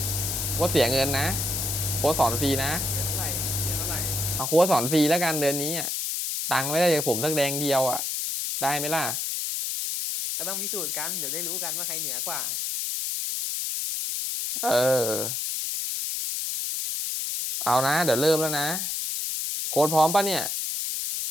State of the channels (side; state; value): left; noise; hiss, 1 dB below the sound